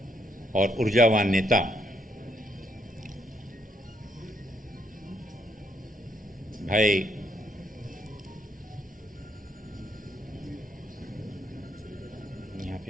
और ऊर्जावान नेता भाई यहाँ पे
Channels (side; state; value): both; normal; correlation 0.73